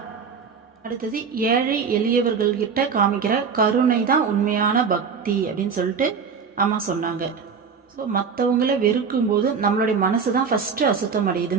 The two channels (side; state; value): left; quieter; 5.9 dB